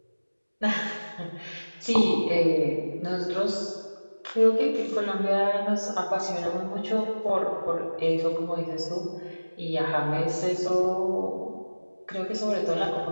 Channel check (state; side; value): inverted; both; correlation -1.00